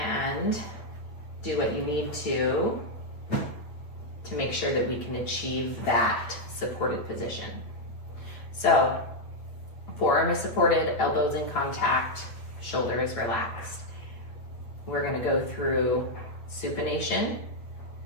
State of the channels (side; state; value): right; late; 8.6 ms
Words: do what you need to make sure that we can achieve that supported position. So forearm is supported, elbows in contact, shoulder is relaxed. We're going to go through supination